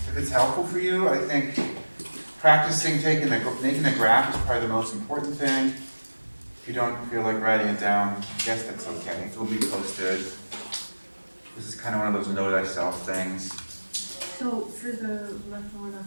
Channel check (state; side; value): inverted; both; correlation -1.00